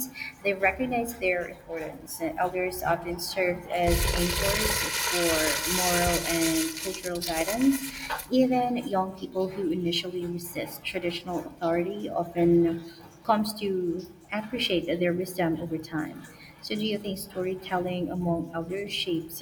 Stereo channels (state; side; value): identical; both; correlation 1.00